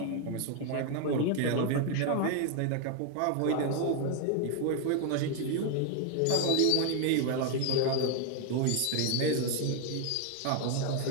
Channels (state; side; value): different; both; correlation 0.01